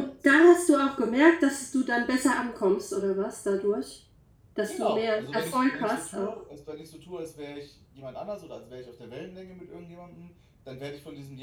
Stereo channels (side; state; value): both; identical; correlation 1.00